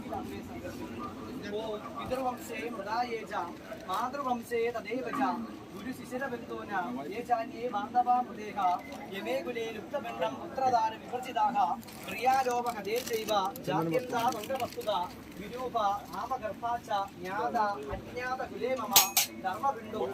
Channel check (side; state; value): both; identical; correlation 1.00